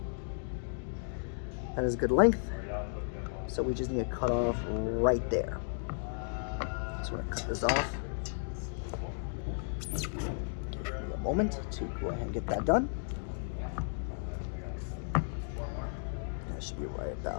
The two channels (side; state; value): right; silent; digital silence